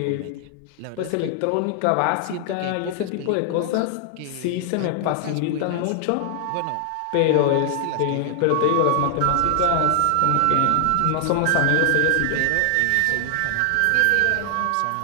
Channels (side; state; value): both; different; correlation 0.00